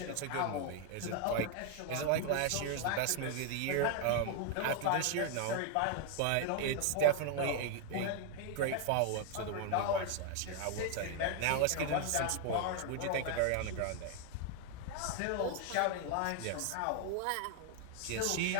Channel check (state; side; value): different; both; correlation 0.00